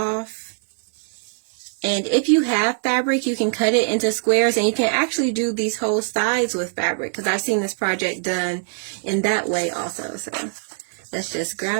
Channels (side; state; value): left; silent; digital silence